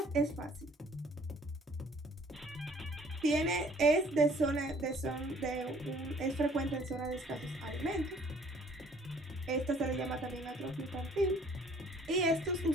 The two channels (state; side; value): normal; both; correlation 0.57